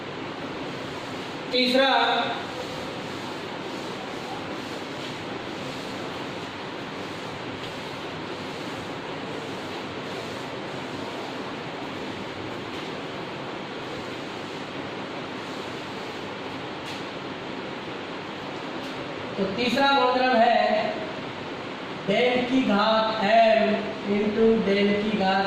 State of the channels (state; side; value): identical; both; correlation 1.00